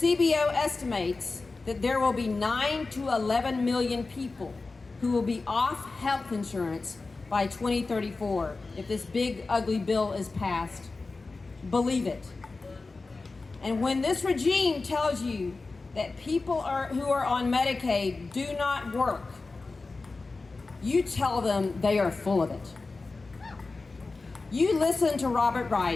estimates that there will be 9 to 11 million people who will be off health insurance by 2034 if this big, ugly bill is passed, believe it. And when this regime tells you that people who are on Medicaid do not work, you tell them they are full of it. You listen to Robert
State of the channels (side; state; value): right; quieter; 3.7 dB